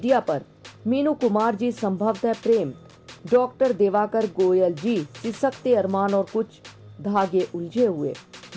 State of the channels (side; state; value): both; identical; correlation 1.00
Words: पर, मीनू कुमार जी संभवतः प्रेम, डॉक्टर देवाकर गोयल जी सिसकते अरमान और कुछ धागे उलझे हुए,